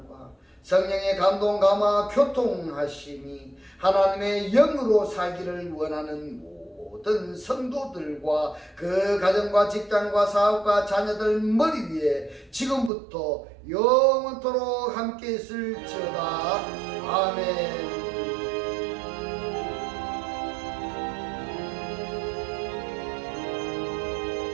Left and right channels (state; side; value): drops out; left; at 12.9 s